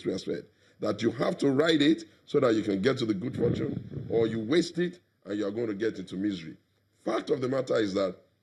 said, that you have to ride it so that you can get to the good fortune, or you waste it and you are going to get into misery. Fact of the matter is that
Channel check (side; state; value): both; identical; correlation 1.00